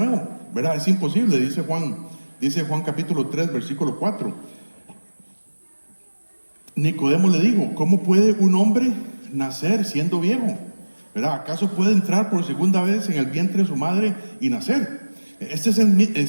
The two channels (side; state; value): both; inverted; correlation -1.00